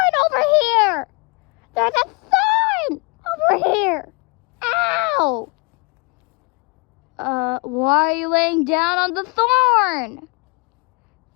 over here! There's a thorn over here! Ow! Why are you laying down on the thorn?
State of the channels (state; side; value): quieter; right; 30.1 dB